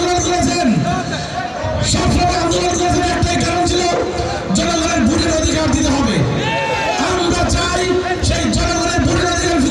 করেছেন, সবসময় আন্দোলন করেছেন, একটাই কারণ ছিল জনগণের ভোটের অধিকার দিতে হবে। আমরা চাই সেই জনগণের ভোটের অধিকার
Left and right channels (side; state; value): both; identical; correlation 1.00